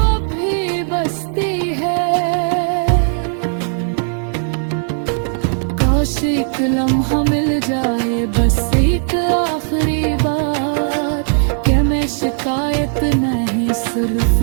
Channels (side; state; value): left; silent; digital silence